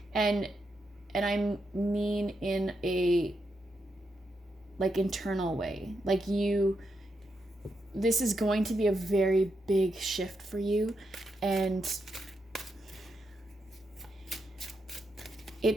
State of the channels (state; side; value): normal; both; correlation 0.83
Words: And I mean in a like internal way. Like, this is going to be a very big shift for you, and